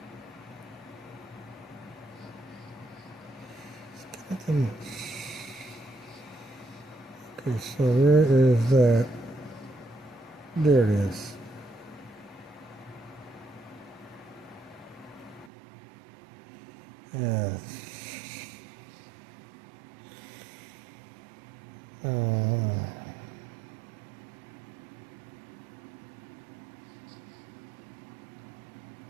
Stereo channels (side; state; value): left; drops out; at 15.5 s